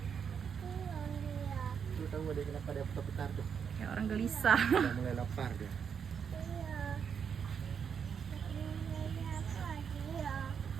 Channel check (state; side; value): quieter; left; 7.1 dB